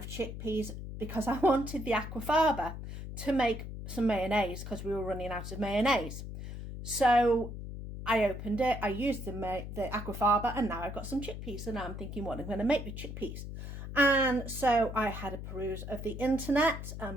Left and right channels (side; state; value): left; noise; hum, 8 dB below the sound